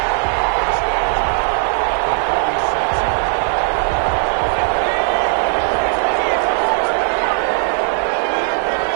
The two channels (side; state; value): left; silent; 56 dB below the other